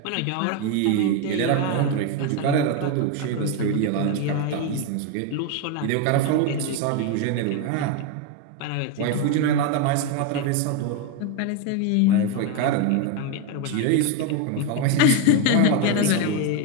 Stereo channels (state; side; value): different; both; correlation 0.02